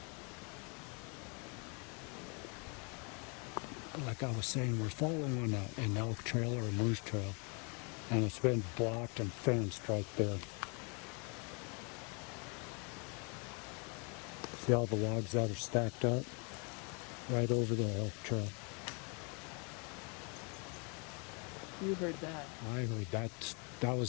Like I was saying, we're following an elk trail or a moose trail, and it's been blocked and fenced right there. See all the logs that are stacked up right over the elk trail. You heard that. I heard that. That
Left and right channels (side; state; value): right; quieter; 34.8 dB